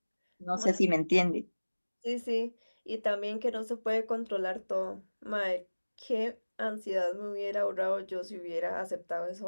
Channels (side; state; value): both; inverted; correlation -1.00